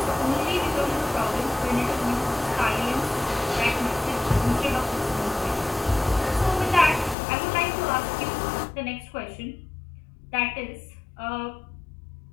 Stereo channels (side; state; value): right; drops out; at 7.2 s